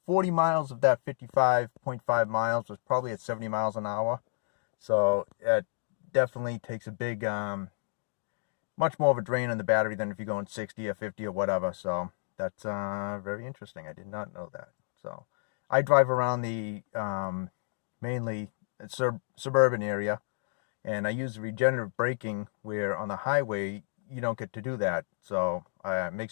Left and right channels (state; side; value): silent; right; digital silence